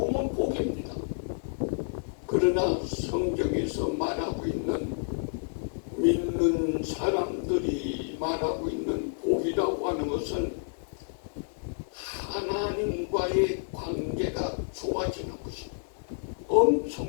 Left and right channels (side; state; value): right; silent; digital silence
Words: 복입니다. 그러나 성경에서 말하고 있는, 믿는 사람들이 말하고 있는 복이라고 하는 것은 하나님과의 관계가 좋아지는 것입니다.